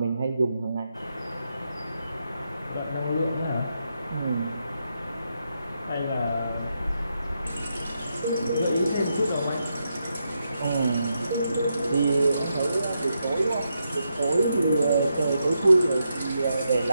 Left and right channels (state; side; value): inverted; both; correlation -0.83